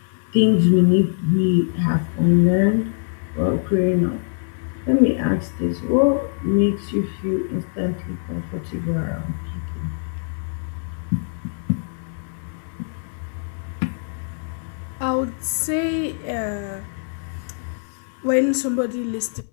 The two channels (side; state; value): right; silent; digital silence